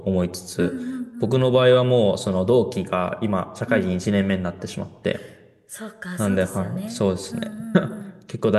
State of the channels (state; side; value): identical; both; correlation 1.00